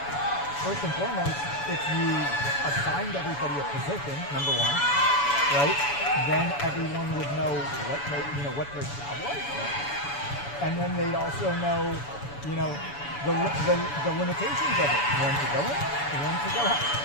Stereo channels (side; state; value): right; late; 7.0 ms